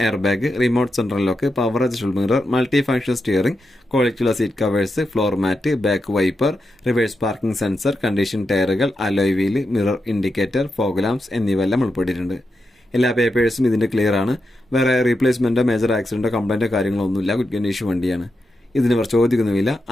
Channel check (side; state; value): both; normal; correlation 0.87